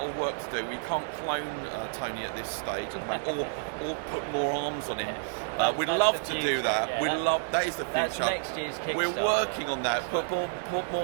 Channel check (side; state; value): left; silent; digital silence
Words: of work to do, we can't clone Tony at this stage or put more arms on him. We'd love to do that. Yeah, that is the future. That's next year's Kickstarter. We're working on that. Put